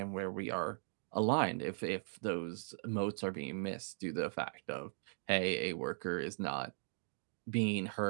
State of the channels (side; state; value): left; silent; digital silence